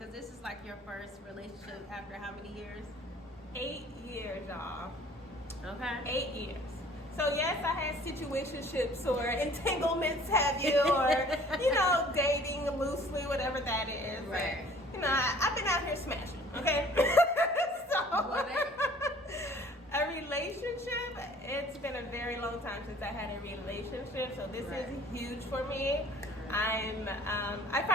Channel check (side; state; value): both; normal; correlation 0.52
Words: this is like your first relationship after how many years? 8 years, y'all. Okay. 8 years. So yes, I had situationships or entanglements, have you, or dating loosely, whatever that is. Right. But, I've been out here smashing. Okay. So a relationship. It's been a very long time since I had a relationship, so this is huge for me. I